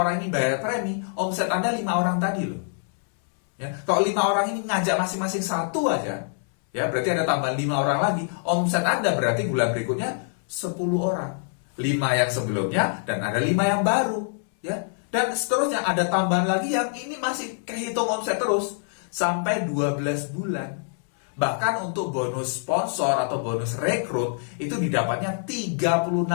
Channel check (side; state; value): right; silent; 62 dB below the other